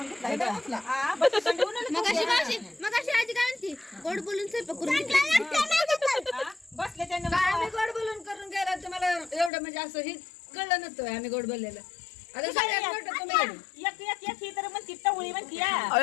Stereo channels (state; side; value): drops out; right; at 9.5 s